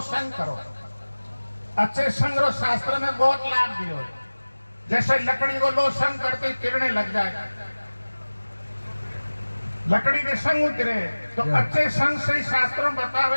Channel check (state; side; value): inverted; both; correlation -1.00